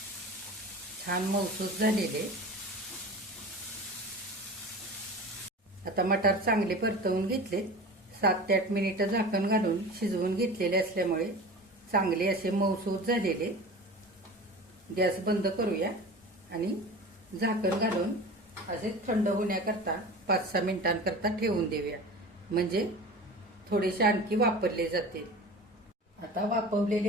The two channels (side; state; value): both; normal; correlation 0.35